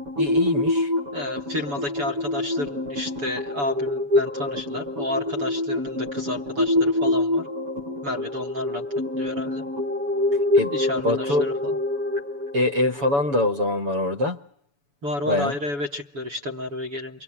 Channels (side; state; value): left; late; 7.0 ms